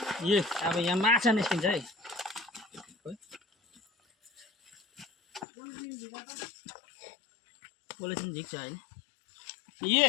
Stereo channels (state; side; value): drops out; right; at 5.5 s